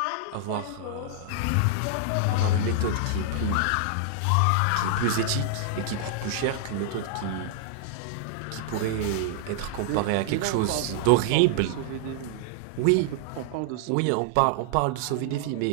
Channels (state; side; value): different; both; correlation -0.01